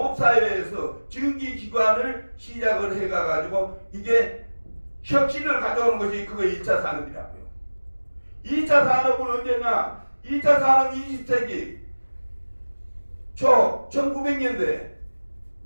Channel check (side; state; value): both; inverted; correlation -1.00